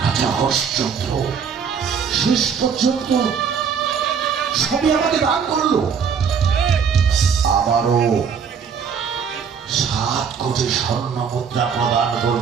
রাজা হরিশ্চন্দ্র শেষ পর্যন্ত সবই আমাকে দান করলো। আবারও 7 কোটি স্বর্ণ মুদ্রা প্রদান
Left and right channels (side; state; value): left; quieter; 6.7 dB